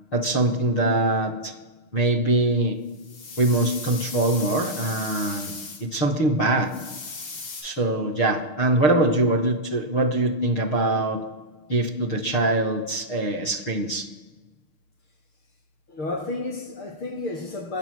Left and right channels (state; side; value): late; right; 6.5 ms